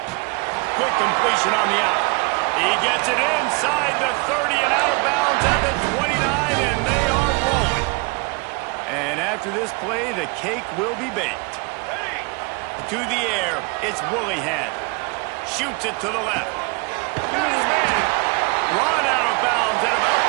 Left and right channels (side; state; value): left; quieter; 29.5 dB